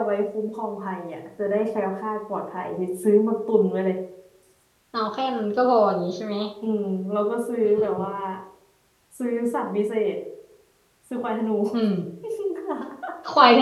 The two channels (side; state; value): both; identical; correlation 1.00